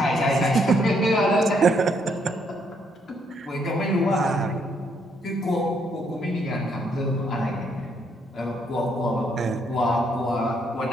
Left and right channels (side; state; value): both; normal; correlation 0.72